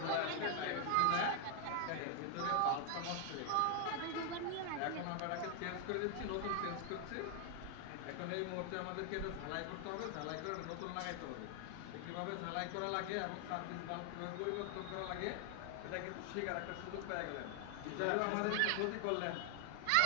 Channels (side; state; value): both; different; correlation 0.00